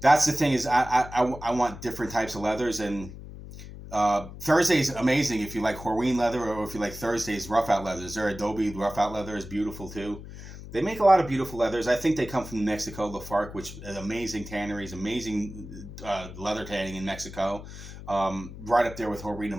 the thing, is I want different types of leathers. And Thursday's amazing if you like Horween leather, or if you like Thursday's rough out leathers. Their Adobe rough out leather is beautiful too. They make a lot of beautiful leathers. I think they come from Mexico, Lafargue, which is amazing tanneries, amazing leather tanning in Mexico. Right up there with Horween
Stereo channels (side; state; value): left; noise; hum, 13 dB below the sound